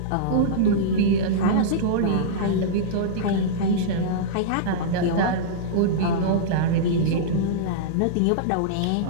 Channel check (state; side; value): different; both; correlation -0.03